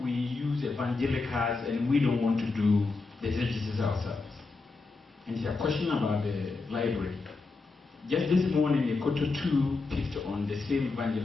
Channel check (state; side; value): quieter; right; 3.9 dB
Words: we use evangelicals and we don't want to do the exegesis ourselves. And he had a question about the library. Just this morning, the Koto 2 picked on the same